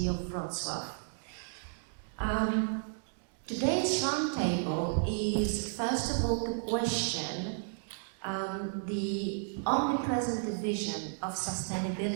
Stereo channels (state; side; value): silent; left; digital silence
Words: of Wroclaw. Today's Roundtable is first of all to question the omnipresent division of